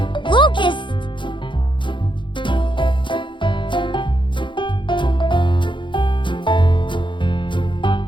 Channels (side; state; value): right; late; 0.23 ms